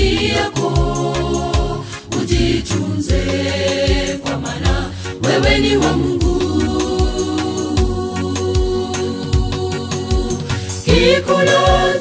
yako, ujitunze kwa maana wewe ni wa Mungu.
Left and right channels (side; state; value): both; identical; correlation 1.00